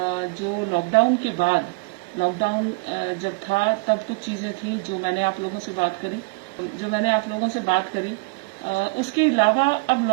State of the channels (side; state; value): left; quieter; 27.8 dB